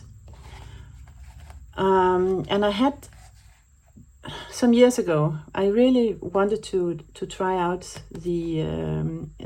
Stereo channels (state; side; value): identical; both; correlation 1.00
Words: And I had, some years ago, I really wanted to try out the